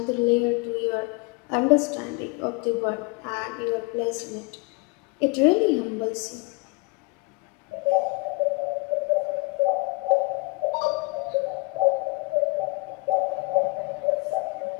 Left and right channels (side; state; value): right; quieter; 26.9 dB